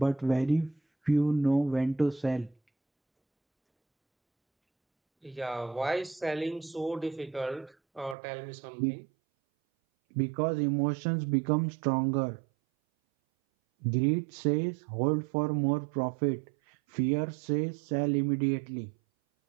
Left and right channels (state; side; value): drops out; left; at 8.2 s